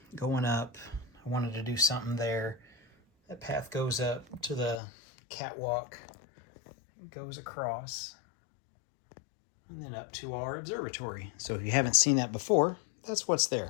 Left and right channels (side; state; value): right; drops out; at 4.8 s